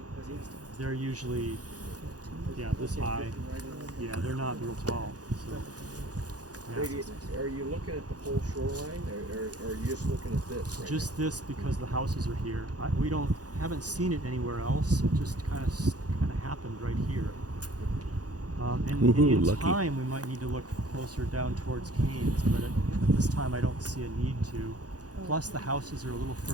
you put in? They're usually this high. Yeah, they're not real tall. So, yeah. Brady, are you looking at the whole shoreline, or are you just looking at this? Right Just this because the houses are here. We haven't seen it anywhere else. It just kind of happened right here. And Woohoo, in lucky. time, we might need to look closer down towards Canes, but at this time, I don't see a need to. Plus, the houses are a little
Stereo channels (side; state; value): left; late; 0.68 ms